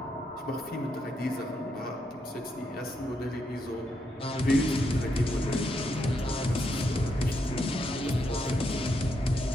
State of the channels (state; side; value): normal; both; correlation 0.80